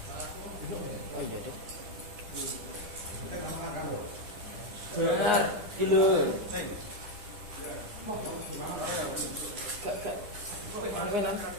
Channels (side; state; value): left; late; 10 ms